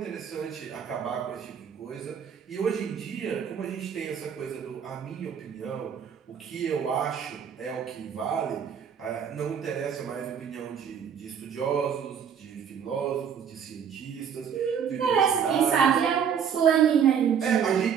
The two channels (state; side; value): quieter; left; 7.7 dB